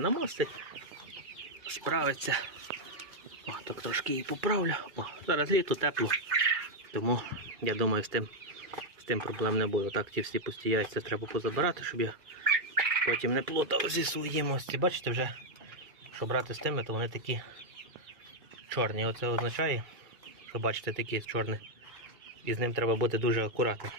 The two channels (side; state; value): left; late; 2.3 ms